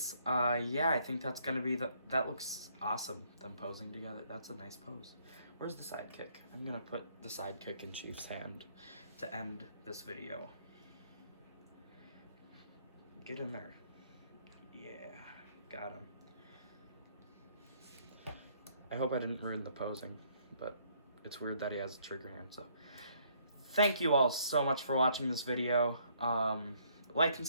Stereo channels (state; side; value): inverted; both; correlation -0.66